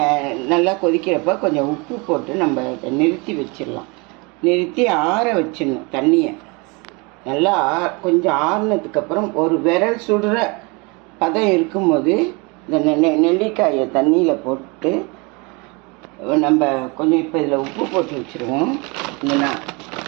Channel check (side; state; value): left; quieter; 29.0 dB